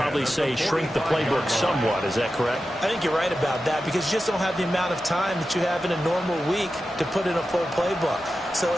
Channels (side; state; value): both; normal; correlation 0.92